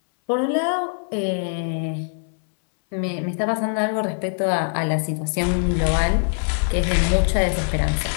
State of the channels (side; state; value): right; silent; 62 dB below the other